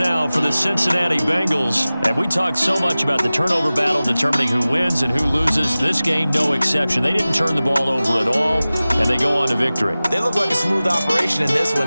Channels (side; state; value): both; inverted; correlation -0.97